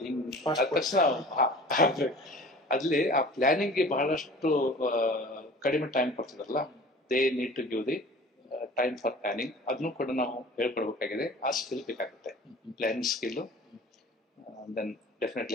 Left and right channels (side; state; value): both; normal; correlation 0.43